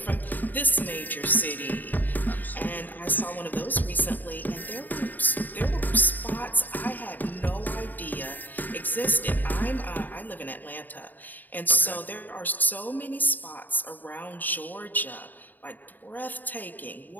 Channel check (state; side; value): late; right; 0.087 ms